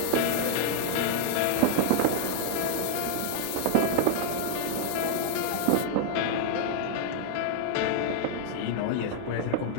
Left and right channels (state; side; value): different; both; correlation 0.00